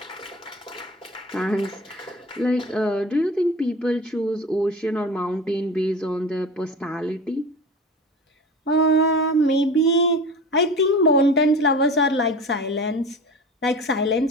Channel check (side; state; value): both; normal; correlation 0.34